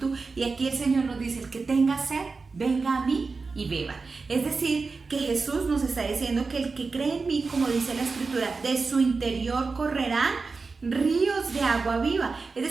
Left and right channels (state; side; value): quieter; left; 4.3 dB